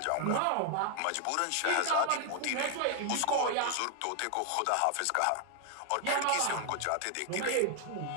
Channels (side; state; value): both; different; correlation 0.00